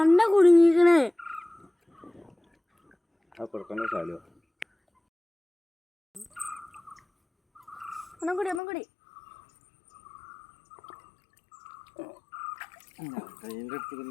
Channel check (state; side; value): drops out; right; at 8.6 s